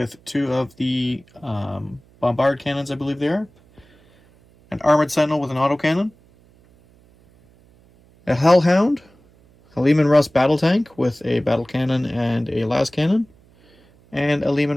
2 of the bombard cannons, I believe they are, an armored sentinel with an autocannon, a hellhound, a Lehman Russ battle tank with a battle cannon and a las cannon, and a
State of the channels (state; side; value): noise; right; hum, 30 dB below the sound